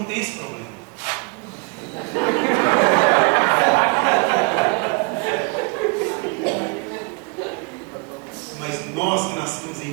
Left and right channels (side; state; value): left; quieter; 32.2 dB